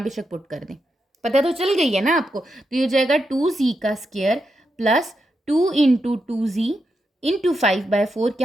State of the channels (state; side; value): normal; both; correlation 0.85